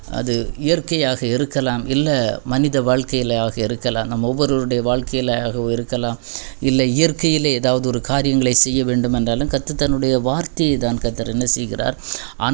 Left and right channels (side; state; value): left; silent; digital silence